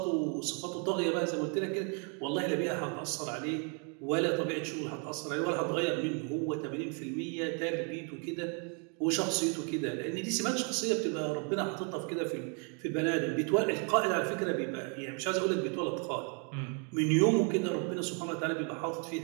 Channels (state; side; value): quieter; left; 38.0 dB